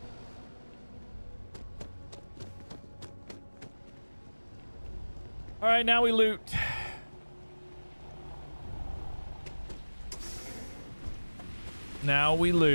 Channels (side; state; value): both; inverted; correlation -1.00